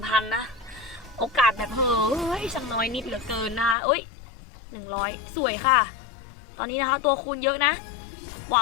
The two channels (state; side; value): drops out; right; at 3.8 s